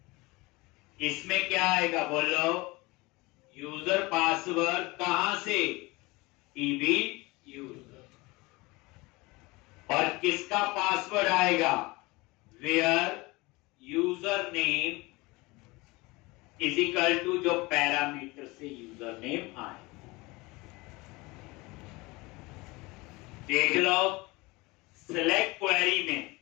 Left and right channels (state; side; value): quieter; right; 23.3 dB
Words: इसमें क्या आएगा बोलो, यूजर पासवर्ड कहां से, टीबी यूजर, और किसका पासवर्ड आएगा, where user name is equal to जो पैरामीटर से यूजर नेम आए। देख लो सिलेक्ट क्वेरी में